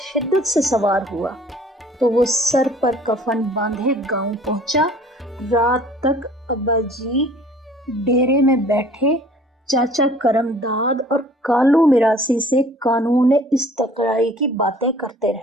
شدت سے سوار ہوا تو وہ سر پر کفن باندھے گاؤں پہنچا۔ رات تک ابا جی ڈیرے میں بیٹھے چاچا کرم داد اور کالو میراسی سے قانون استقرائی کی باتیں کرتے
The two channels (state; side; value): normal; both; correlation 0.51